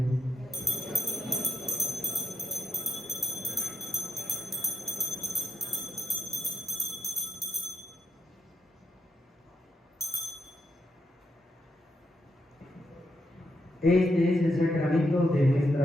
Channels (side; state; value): both; normal; correlation 0.80